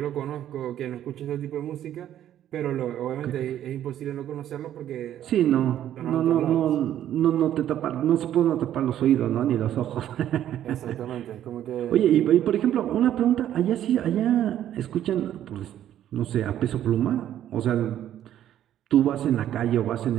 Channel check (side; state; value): left; quieter; 11.4 dB